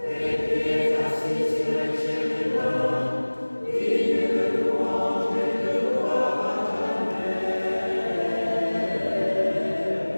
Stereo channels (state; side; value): inverted; both; correlation -1.00